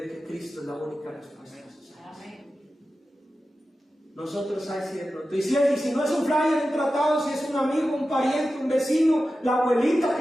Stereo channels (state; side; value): normal; both; correlation 0.93